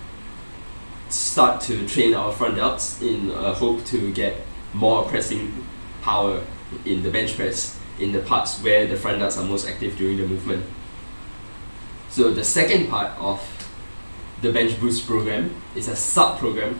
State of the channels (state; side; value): inverted; both; correlation -1.00